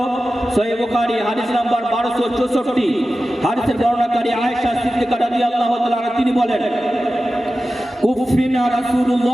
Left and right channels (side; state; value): both; normal; correlation 0.94